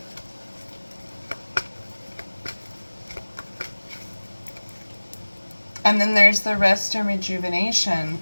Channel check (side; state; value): both; inverted; correlation -1.00